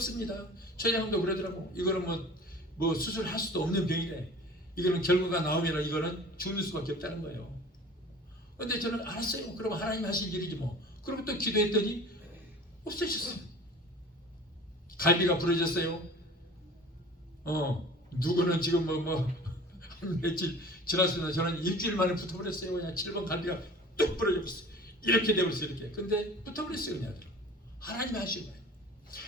췌장암도 그러더라고. 이거는 뭐 수술할 수도 없는 병이래. 이거는 결과가 나오면 이거는 죽는 수밖에 없다는 거예요. 근데 저는 알았어요. 그럼 하나님 하실 일이지 뭐. 그리고 또 기도했더니 없어졌어요. 갈비가 부러졌어요. 누구는 지금 한 며칠 지났으면 저는 일주일 만에 붙어버렸어요. 그냥 7번 갈비가 뚝 부러져버렸어요. 이렇게 되버렸어요. 이렇게. 근데 붙어버렸어요. 그냥. 하나님이 하신 거예요.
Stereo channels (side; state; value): both; normal; correlation 0.42